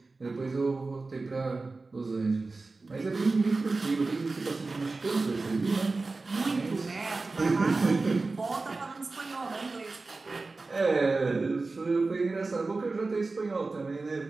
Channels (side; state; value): left; quieter; 3.7 dB